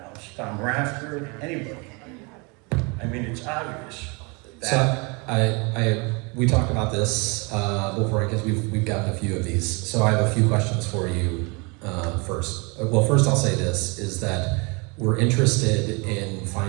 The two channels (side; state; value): left; quieter; 30.0 dB